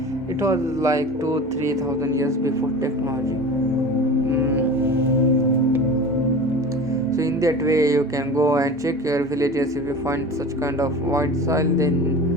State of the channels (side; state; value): both; normal; correlation 0.35